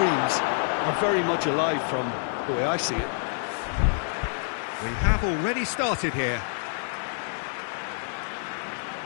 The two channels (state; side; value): silent; right; digital silence